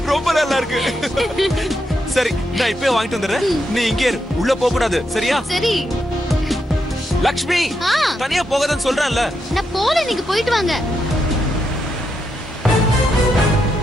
ரொம்ப நல்லா இருக்கு. சரி, நான் இப்பவே வாங்கிட்டு வந்துடுறேன். நீ இங்கே இரு, உள்ள போக கூடாது. சரியா? சரி. லக்ஷ்மி, தனியா போகாதன்னு சொல்றேன்ல. நான் போல, நீங்க போயிட்டு வாங்க.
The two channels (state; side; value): normal; both; correlation 0.83